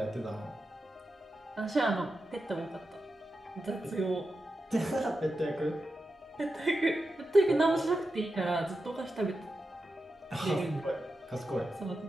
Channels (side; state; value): both; normal; correlation 0.90